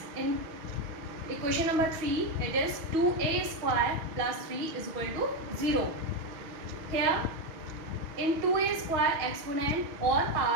in equation number 3 it is 2a square plus 3 is equal to 0. Here in 2a square exponent or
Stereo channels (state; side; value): late; left; 6.4 ms